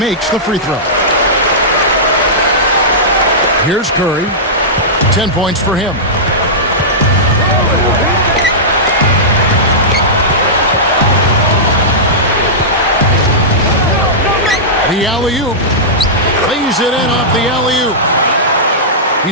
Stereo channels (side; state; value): both; normal; correlation -0.15